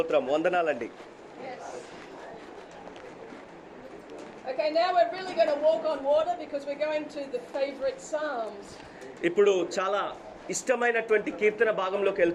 వందనాలండి. Okay, now we're really going to walk on water because we're going to the favorite Psalms. ఇప్పుడు చాలా ఇష్టమైనటువంటి కీర్తన భాగంలోకి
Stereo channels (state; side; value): identical; both; correlation 1.00